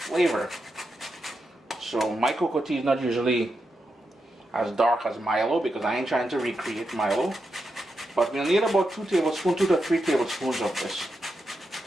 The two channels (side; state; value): both; normal; correlation 0.86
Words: So my cocoa tea is not usually as dark as Milo, because I ain't trying to recreate Milo. But we'll need about 2 to 3 tablespoons of this.